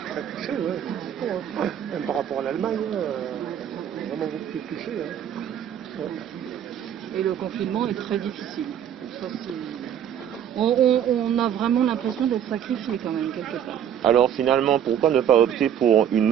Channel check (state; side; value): quieter; left; 9.5 dB